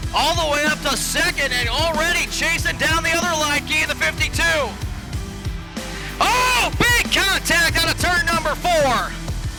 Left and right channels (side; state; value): both; identical; correlation 1.00